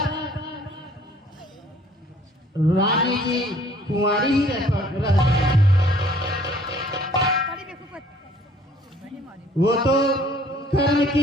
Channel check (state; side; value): normal; both; correlation 0.57